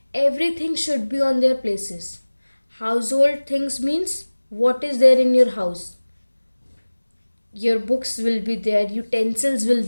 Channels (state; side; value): inverted; both; correlation -1.00